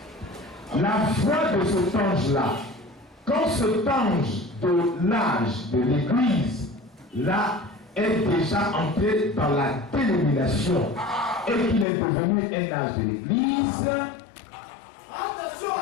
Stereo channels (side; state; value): right; drops out; at 11.9 s